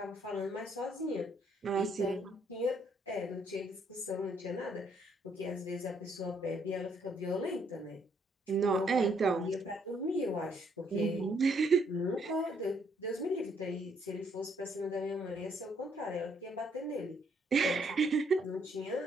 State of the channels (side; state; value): both; normal; correlation 0.69